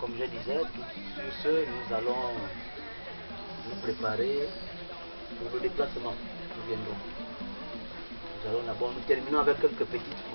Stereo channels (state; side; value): inverted; both; correlation -1.00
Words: je disais, sur ce, nous allons nous préparer pour le déplacement. Nous viendrons. Nous allons d'abord, nous terminons avec quelques petites